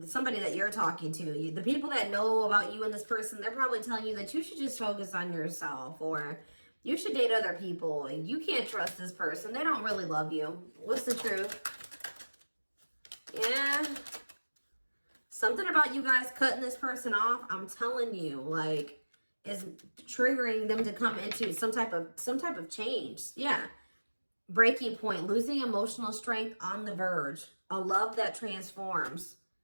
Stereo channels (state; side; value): inverted; both; correlation -1.00